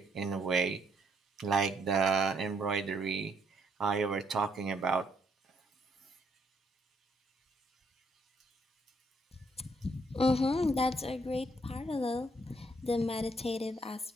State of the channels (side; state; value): both; normal; correlation 0.70